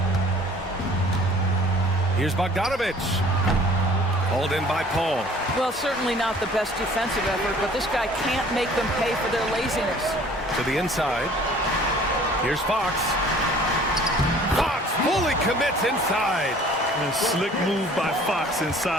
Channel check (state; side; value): normal; both; correlation 0.51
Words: Here's Bogdanovich. Hauled in by Paul. Well, certainly not the best defensive effort, but this guy can't make them pay for their laziness. To the inside. Here's Fox. Fox fully commits inside. A slick move by Fox